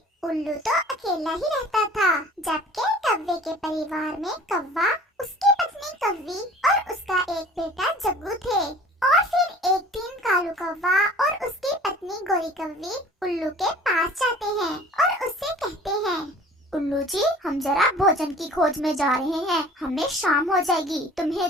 उल्लू तो अकेला ही रहता था, जबकि कौवे के परिवार में कौवा, उसकी पत्नी कौवी और उसका एक बेटा जग्गू थे। और फिर एक दिन कालू कौवा और उसकी पत्नी गोरी कौवी उल्लू के पास जाते हैं और उससे कहते हैं, उल्लू जी, हम जरा भोजन की खोज में जा रहे हैं। हमें शाम हो जाएगी। तुम्हें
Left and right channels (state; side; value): normal; both; correlation 0.46